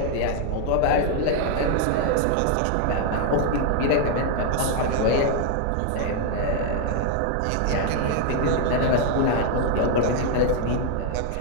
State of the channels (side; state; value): both; different; correlation 0.00